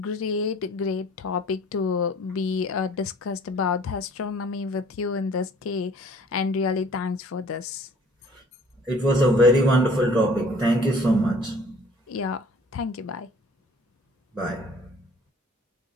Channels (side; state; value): both; normal; correlation 0.52